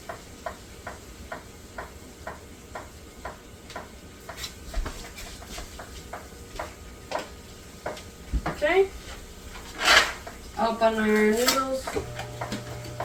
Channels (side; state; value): both; identical; correlation 1.00